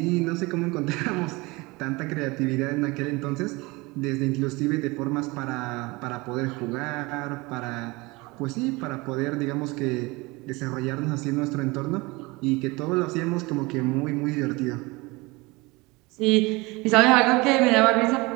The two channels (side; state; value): left; quieter; 24.0 dB